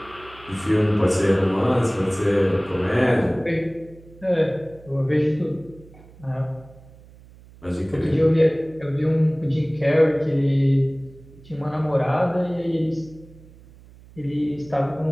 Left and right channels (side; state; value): right; noise; hum, 23 dB below the sound